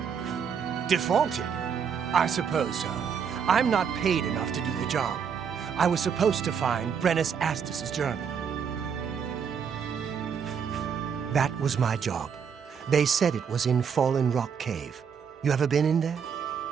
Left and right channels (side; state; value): left; quieter; 7.0 dB